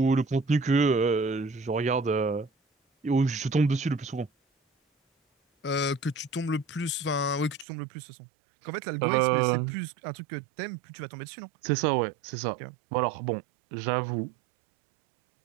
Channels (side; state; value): left; drops out; at 7.7 s